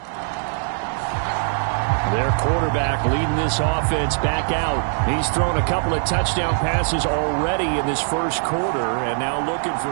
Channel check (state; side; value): silent; left; 62 dB below the other